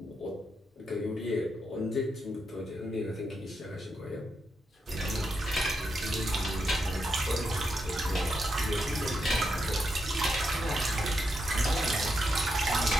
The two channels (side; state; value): both; normal; correlation 0.83